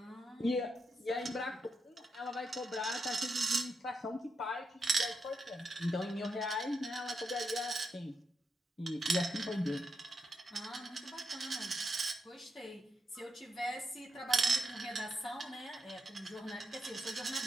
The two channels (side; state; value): both; normal; correlation 0.83